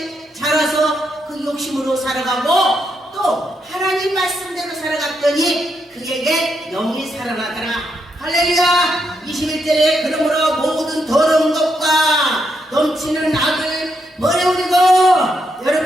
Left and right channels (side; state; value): both; normal; correlation 0.80